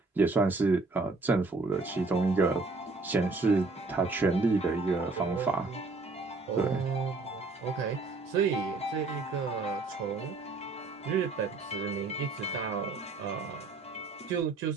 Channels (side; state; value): left; quieter; 3.6 dB